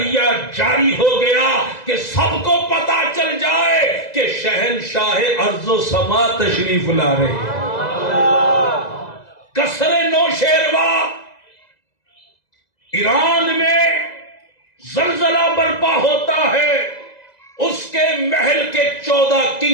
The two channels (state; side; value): late; right; 2.0 ms